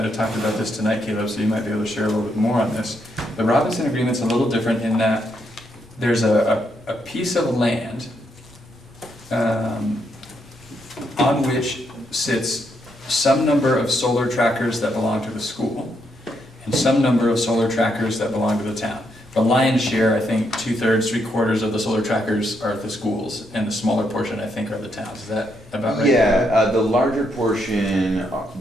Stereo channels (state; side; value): normal; both; correlation 0.77